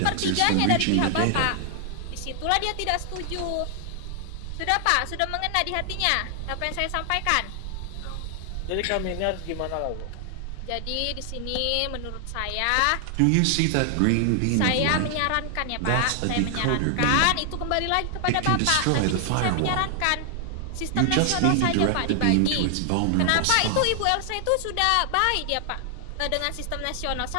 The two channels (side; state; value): both; different; correlation 0.00